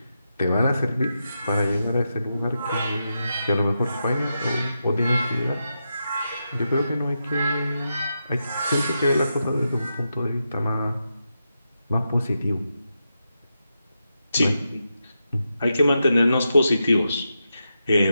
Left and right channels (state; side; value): inverted; both; correlation -0.87